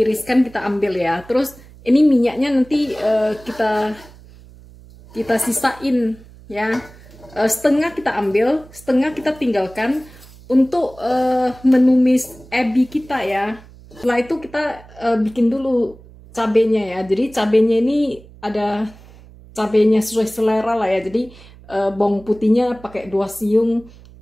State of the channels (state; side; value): noise; right; hum, 22 dB below the sound